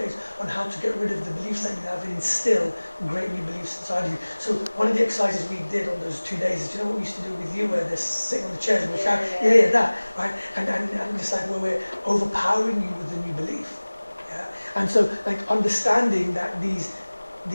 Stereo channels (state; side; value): inverted; both; correlation -1.00